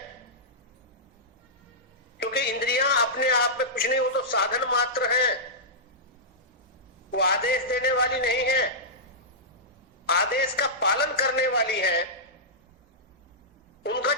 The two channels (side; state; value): both; normal; correlation -0.14